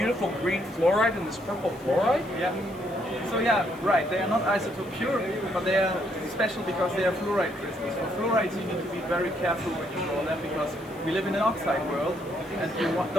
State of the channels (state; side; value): noise; left; hiss, 24 dB below the sound